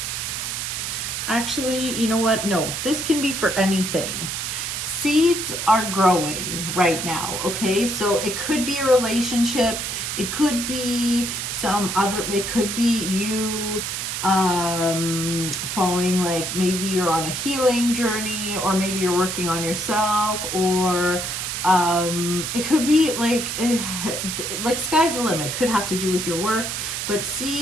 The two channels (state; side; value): noise; right; hiss, 3 dB below the sound